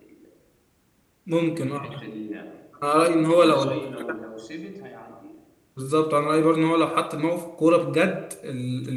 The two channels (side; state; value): both; identical; correlation 1.00